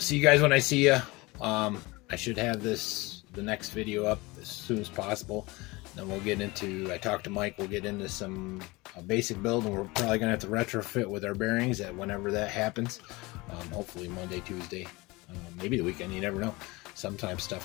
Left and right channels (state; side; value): quieter; right; 23.2 dB